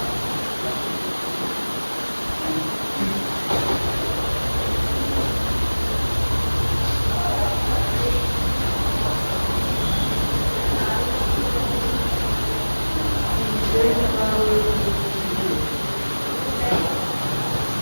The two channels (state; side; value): inverted; both; correlation -1.00